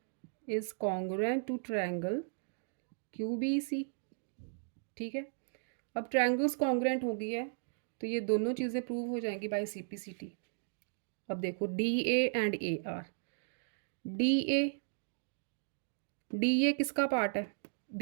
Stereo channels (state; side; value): silent; left; digital silence